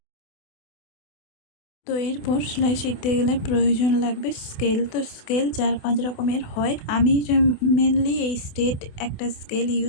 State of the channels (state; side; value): late; right; 28 ms